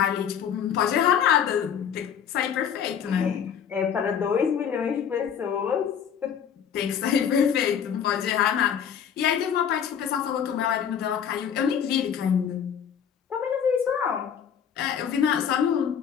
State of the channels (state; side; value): quieter; right; 8.1 dB